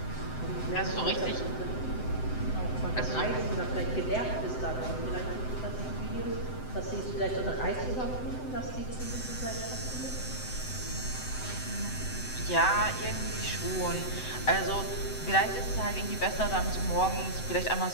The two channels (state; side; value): late; right; 7.8 ms